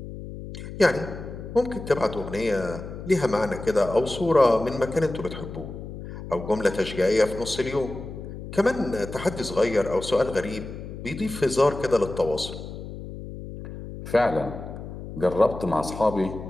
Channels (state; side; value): noise; left; hum, 10 dB below the sound